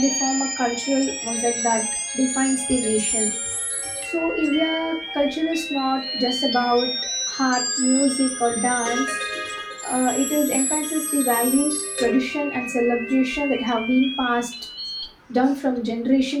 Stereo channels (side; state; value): both; identical; correlation 1.00